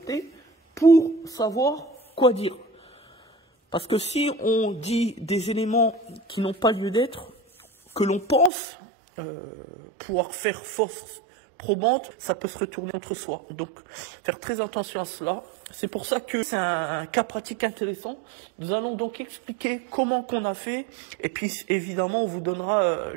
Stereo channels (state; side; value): drops out; left; at 8.5 s